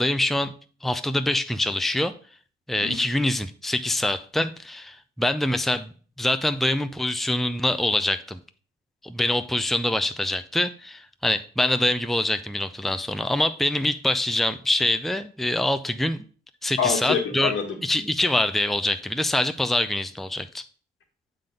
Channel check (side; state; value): both; normal; correlation 0.87